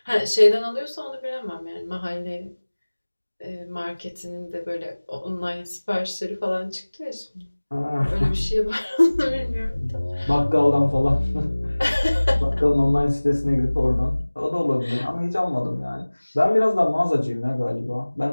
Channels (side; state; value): both; inverted; correlation -1.00